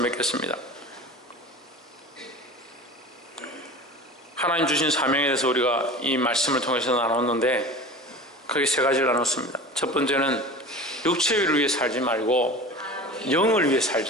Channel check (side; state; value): both; normal; correlation 0.36